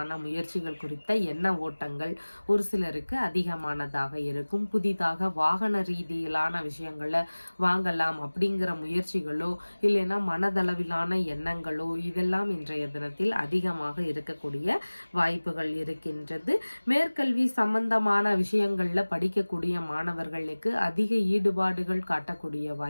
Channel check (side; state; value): both; inverted; correlation -1.00